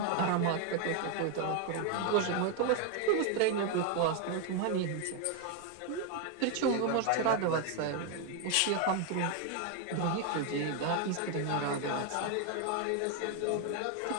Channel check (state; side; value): different; both; correlation 0.01